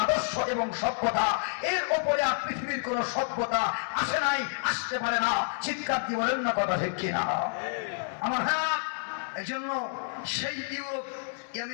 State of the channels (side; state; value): right; silent; digital silence